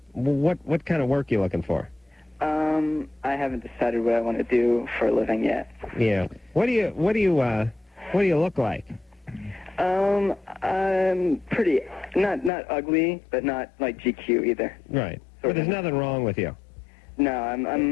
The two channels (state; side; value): drops out; right; at 12.5 s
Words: What kind of work are you looking for? I haven't decided what I want to do for a living yet. Yeah. What do you look like? I'm pretty, not ugly, but not like GQ either. Right. But there's nothing wrong with you. No,